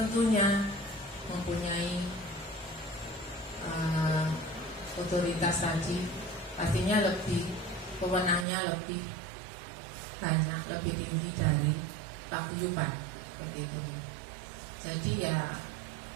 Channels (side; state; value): left; drops out; at 8.5 s